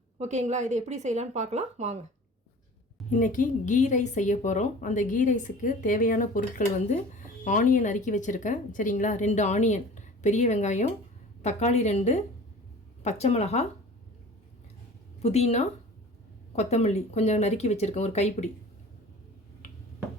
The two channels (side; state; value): both; normal; correlation 0.42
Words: ஓகேங்களா? இதை எப்படி செய்யலான்னு பார்க்கலாம் வாங்க. இன்றைக்கி கீ ரைஸ் செய்ய போகிறோம். அந்த கீ ரைஸுக்கு தேவையான பொருட்கள் வந்து ஆனியன் நறுக்கி வச்சுருக்கேன். சரிங்களா? 2 ஆனியன், பெரிய வெங்காயம், தக்காளி 2, பச்சை மிளகா, புதினா, கொத்தமல்லி கொஞ்சம் நறுக்கி வச்சுருக்கேன், ஒரு கைப்பிடி.